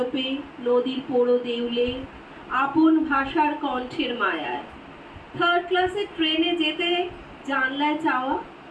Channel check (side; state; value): both; identical; correlation 1.00